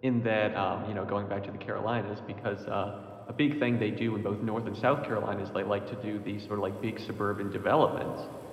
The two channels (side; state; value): both; identical; correlation 1.00